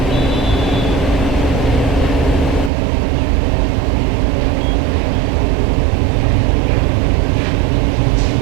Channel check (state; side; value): drops out; left; at 2.7 s